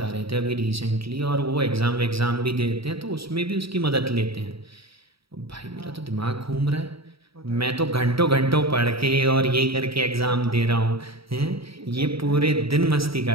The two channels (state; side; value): late; left; 0.76 ms